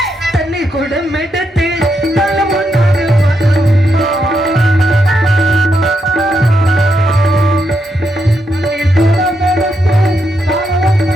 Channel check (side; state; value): both; normal; correlation 0.81